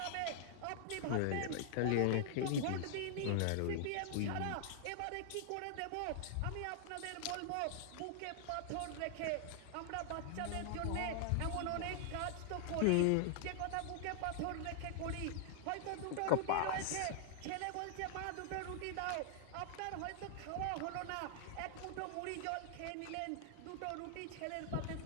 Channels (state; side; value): different; both; correlation -0.01